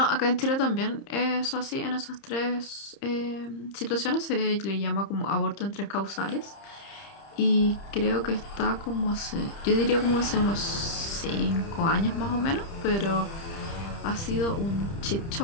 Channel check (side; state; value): right; late; 30 ms